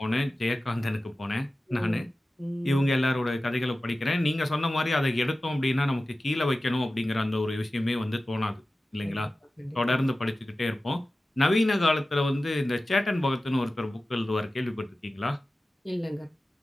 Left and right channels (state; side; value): normal; both; correlation 0.95